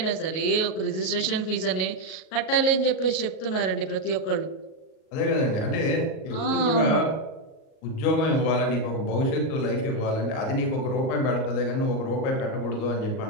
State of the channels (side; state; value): right; late; 38 ms